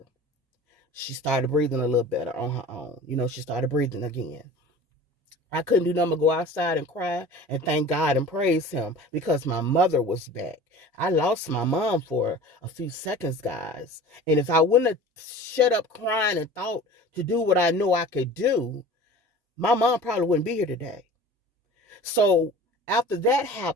She started breathing a little better on her own. She started breathing again. I couldn't do nothing but go outside and cry and thank God and praise him because my mother was back. I lost my mom for a few seconds, guys. And if I wouldn't have shut up crying and thought to do what I know I could do, my mom probably wouldn't be here today. So after that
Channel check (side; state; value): both; normal; correlation 0.40